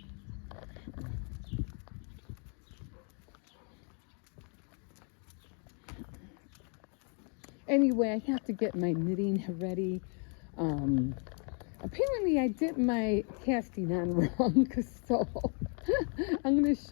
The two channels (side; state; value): right; quieter; 39.8 dB